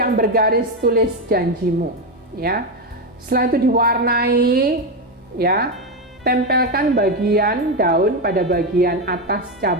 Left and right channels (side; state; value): both; normal; correlation 0.10